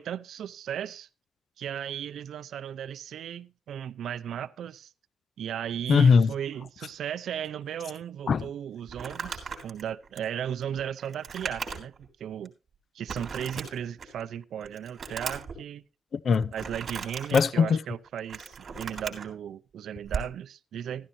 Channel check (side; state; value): both; normal; correlation 0.78